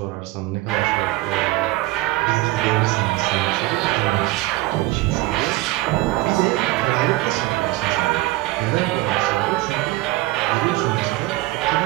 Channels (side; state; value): left; quieter; 19.1 dB